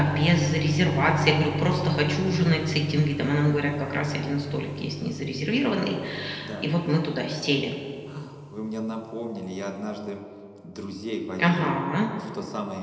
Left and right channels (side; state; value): both; identical; correlation 1.00